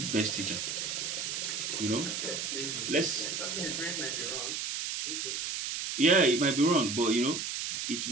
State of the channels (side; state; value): right; noise; hiss, 3 dB below the sound